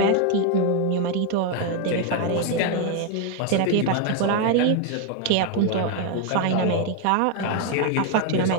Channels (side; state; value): both; different; correlation 0.01